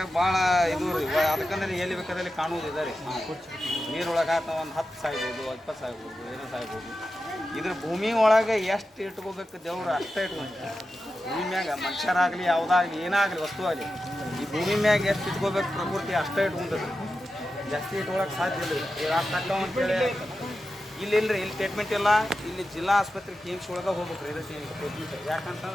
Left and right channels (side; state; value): both; normal; correlation 0.91